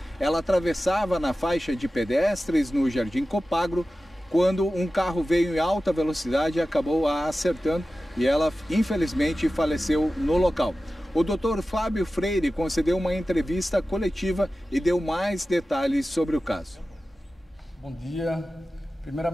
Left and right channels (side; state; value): both; normal; correlation 0.95